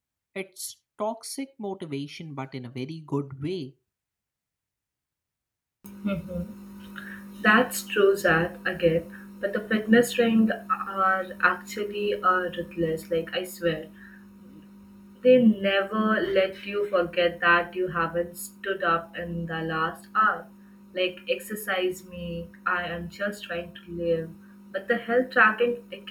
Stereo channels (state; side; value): identical; both; correlation 1.00